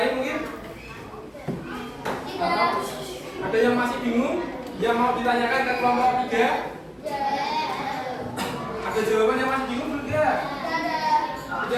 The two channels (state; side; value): identical; both; correlation 1.00